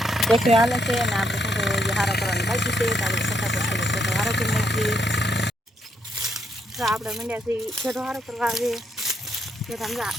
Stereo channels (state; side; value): normal; both; correlation 0.75